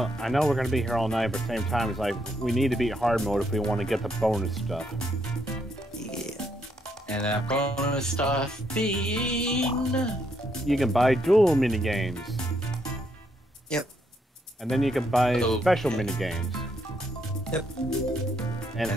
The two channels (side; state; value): both; normal; correlation 0.75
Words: I know we're going to be here all night, but at the same time, it's like, we need to beat hard mode if we want to get the bonus stuff. Yeah. And that bonus stuff being... You can buy dual minigames. Yep. And then you can buy Oh, special okay. minigames. Yep. And